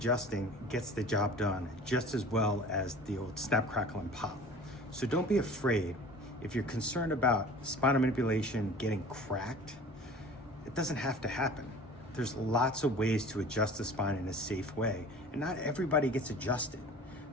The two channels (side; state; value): both; normal; correlation 0.43